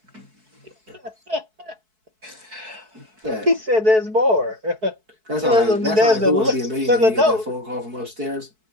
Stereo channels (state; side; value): late; left; 4.6 ms